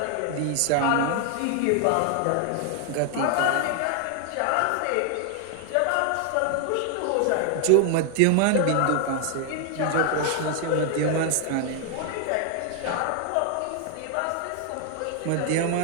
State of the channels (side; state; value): both; different; correlation 0.00